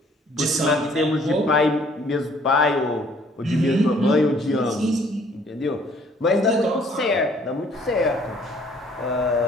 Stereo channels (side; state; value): both; normal; correlation 0.60